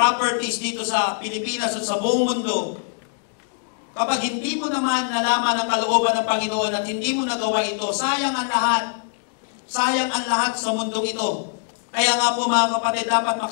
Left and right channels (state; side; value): silent; right; digital silence